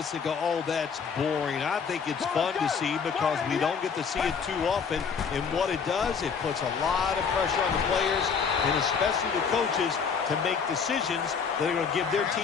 and go, oh, that's boring. I think it's fun to see because we don't get to see it too often. And what it does, it puts a lot of pressure on the players and especially the coaches to make decisions that are going to give their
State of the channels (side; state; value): right; quieter; 6.1 dB